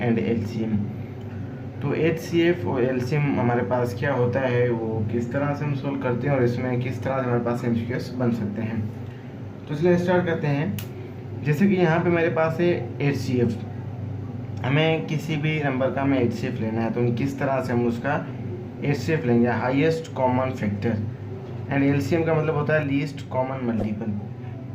LCM। तो HCF और LCM हमारे पास क्या होता है, वो किस तरह से हम सोल्व करते हैं और इसमें किस तरह से हमारे पास MCQs बन सकते हैं। तो इसलिए स्टार्ट करते हैं। जैसे कि यहाँ पे मेरे पास है HCF, हमें किसी भी नंबर का हमें HCF लेना है, तो हम किस तरह से हम उसका HCF लेंगे, highest common factor. And LCM का मतलब होता है लीस्ट कॉमन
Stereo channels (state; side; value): identical; both; correlation 1.00